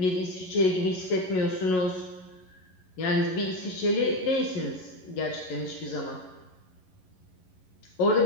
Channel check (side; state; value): right; late; 11 ms